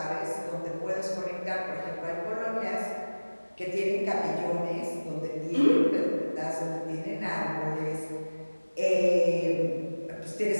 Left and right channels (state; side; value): inverted; both; correlation -1.00